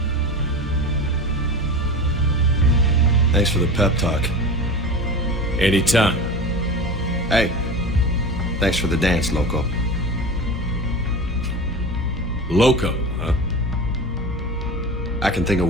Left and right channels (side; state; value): both; normal; correlation 0.31